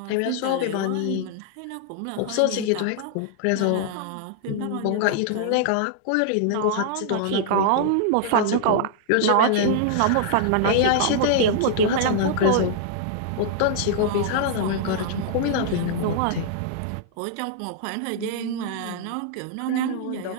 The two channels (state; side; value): different; both; correlation -0.01